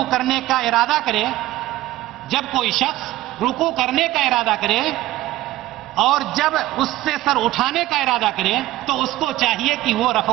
کرنے کا ارادہ کرے، جب کوئی شخص رکوع کرنے کا ارادہ کرے اور جب اس سے سر اٹھانے کا ارادہ کرے تو اس کو چاہیے کہ وہ رفع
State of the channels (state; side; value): quieter; left; 16.2 dB